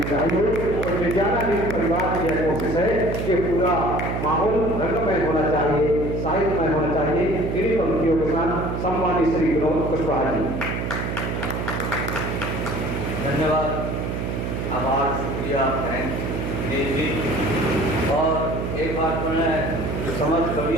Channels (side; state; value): right; noise; hum, 3 dB below the sound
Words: चाहिए। और विज्ञाना परिवार की यह कोशिश है कि पूरा माहौल रंगमय होना चाहिए, साहित्यमय होना चाहिए। इन्हीं पंक्तियों के साथ सम्मानित श्री विनोद कुशवाहा जी। धन्यवाद, आभार, शुक्रिया, थैंक जी। और एक बात मैं समस्त